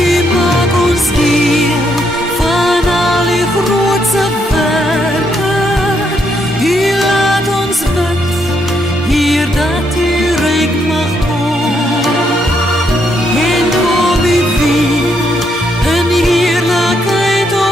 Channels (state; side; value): normal; both; correlation 0.75